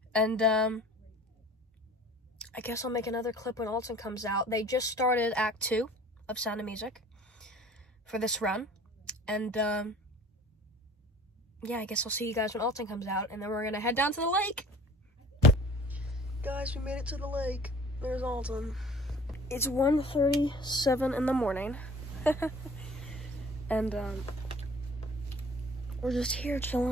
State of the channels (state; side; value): normal; both; correlation 0.48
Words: and I guess I'll make another clip when Alton comes out. They just started Act 2 of Sound of Music for this run, and yeah, I guess I'll see you guys when Alton comes out, and then we're gonna head down to the lake. Guys, we made it to the lake. There's Alton. It's 1:37 in the morning, and we're just here chilling